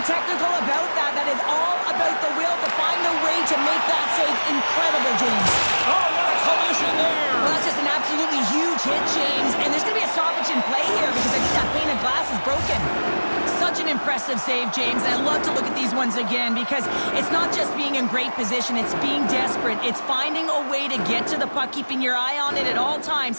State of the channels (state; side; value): inverted; both; correlation -1.00